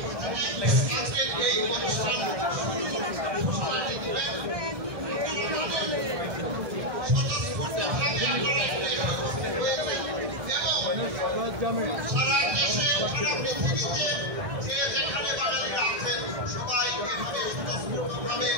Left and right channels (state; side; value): late; left; 1.6 ms